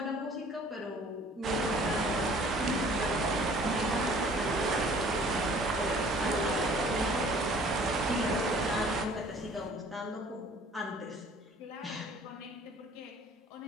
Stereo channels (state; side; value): normal; both; correlation 0.53